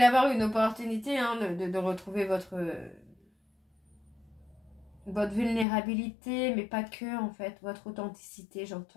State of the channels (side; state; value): right; drops out; at 5.7 s